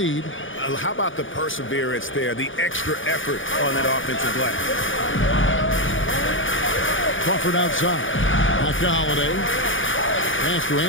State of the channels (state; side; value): late; right; 0.57 ms